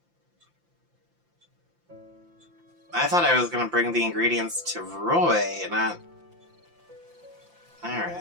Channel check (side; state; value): left; late; 5.8 ms